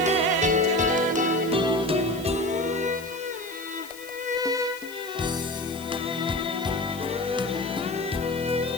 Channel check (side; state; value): left; noise; hiss, 17 dB below the sound